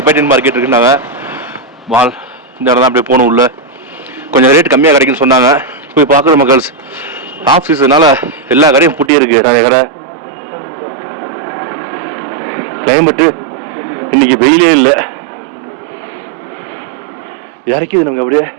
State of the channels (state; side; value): drops out; left; at 9.1 s